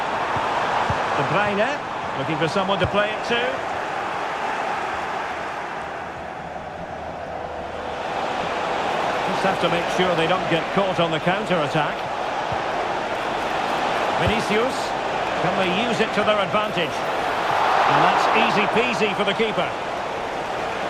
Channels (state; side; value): identical; both; correlation 1.00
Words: De Bruyne, looking for someone to play it to. Just have to make sure they don't get caught on the counter-attack. Vinicius, can they use it to their advantage? And that's easy peasy for the keeper.